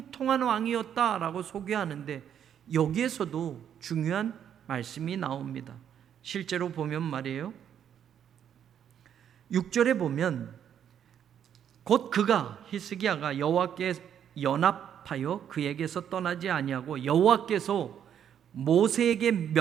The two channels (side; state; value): left; quieter; 9.1 dB